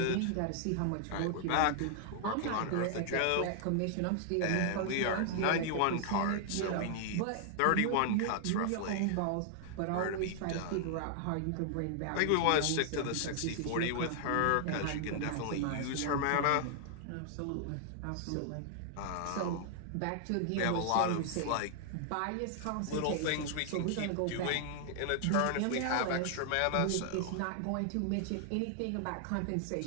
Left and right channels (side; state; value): both; different; correlation 0.00